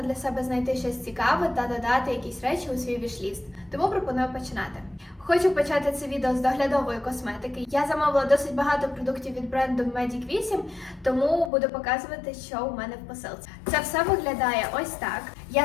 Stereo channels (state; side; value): drops out; right; at 11.5 s